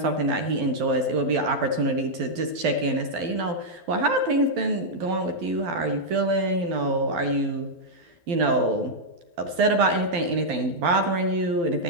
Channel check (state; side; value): late; left; 12 ms